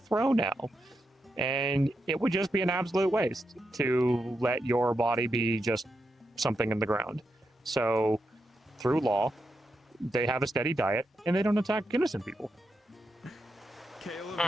row now. And it would just be an absolute waste to let your body be just something in the ground. So, through law, they have a steady diet, and they don't attack innocent people. Caleb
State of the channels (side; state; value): both; normal; correlation 0.85